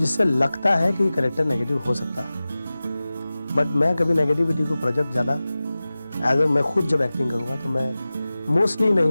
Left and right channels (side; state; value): both; inverted; correlation -0.97